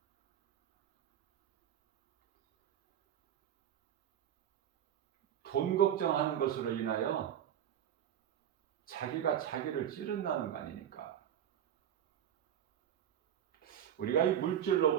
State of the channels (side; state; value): left; quieter; 10.1 dB